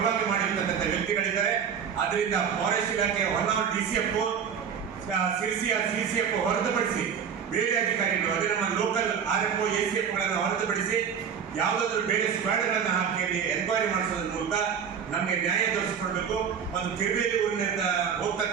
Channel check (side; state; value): left; quieter; 7.3 dB